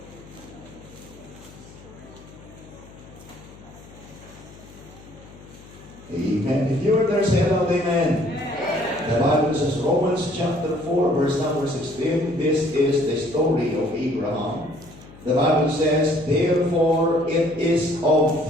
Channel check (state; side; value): noise; left; hum, 20 dB below the sound